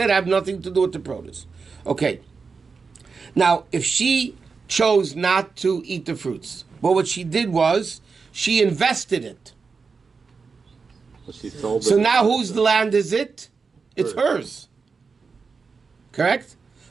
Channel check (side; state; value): left; quieter; 4.9 dB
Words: I have nothing to do with the produce. Okay. Now, if she chose not to eat the fruits, well, what she did was, she invested it. But she sold So it. now whose land is it? It's hers. Correct?